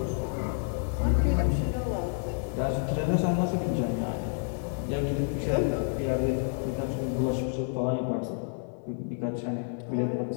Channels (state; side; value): silent; right; 58 dB below the other